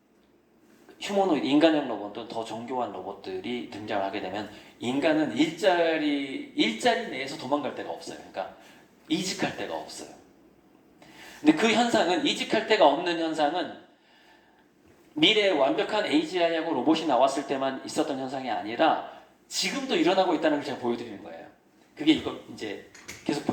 휴머노이드, 인간형 로봇도 더 정교한 로봇들이 등장하게 되면 인간은 일자리 내에서 도망갈 데가 없어요. 그러니까 이직할 데가 없어요. 근데 그 현상은, 이직할 데가 없는 현상은 미래에 완벽한 AGI하고 로봇이 나왔을 때만 있었던 현상이 아니라 지금도 일어나고 있다는 걸 제가 보여드리는 거예요. 그게 이거 이제 계속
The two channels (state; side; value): identical; both; correlation 1.00